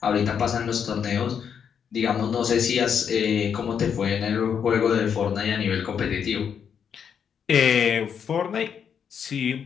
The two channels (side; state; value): right; quieter; 7.6 dB